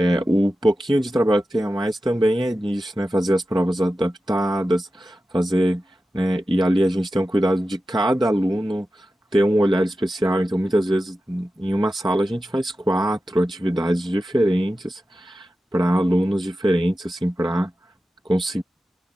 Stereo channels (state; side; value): normal; both; correlation 0.93